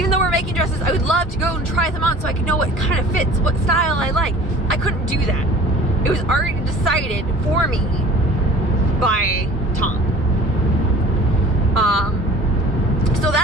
though we're making dresses, I would love to go and try them on so I could know what kind of fits, what style I like. I couldn't do that. It was already decided for me by Tom. So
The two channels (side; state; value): both; normal; correlation 0.46